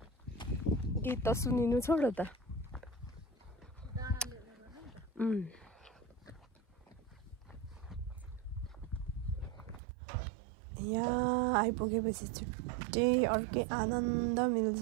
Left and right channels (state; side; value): drops out; left; at 9.8 s